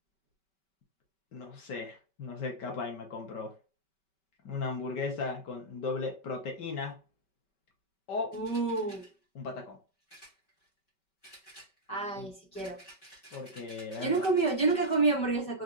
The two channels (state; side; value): late; right; 5.2 ms